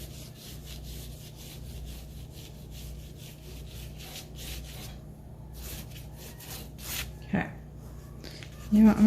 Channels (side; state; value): both; identical; correlation 1.00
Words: Okay. You know what? I'm